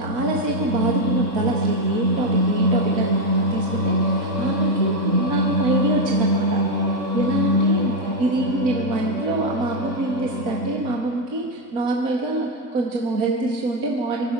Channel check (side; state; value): left; late; 3.7 ms